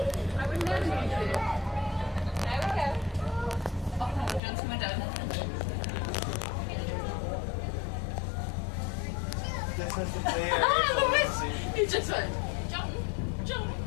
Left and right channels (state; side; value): drops out; right; at 4.4 s